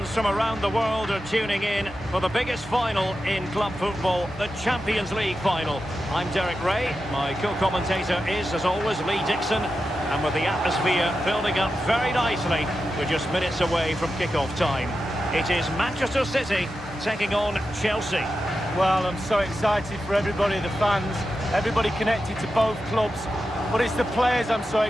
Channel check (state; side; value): normal; both; correlation 0.90